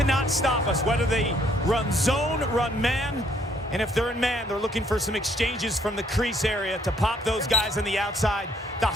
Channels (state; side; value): normal; both; correlation 0.67